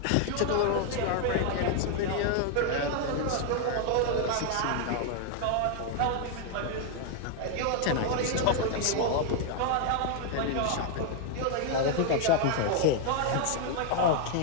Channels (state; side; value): different; both; correlation 0.00